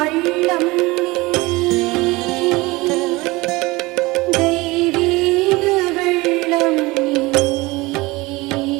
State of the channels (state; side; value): quieter; left; 22.2 dB